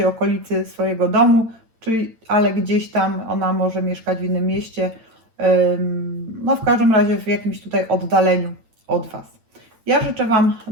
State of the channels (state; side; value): late; left; 9.0 ms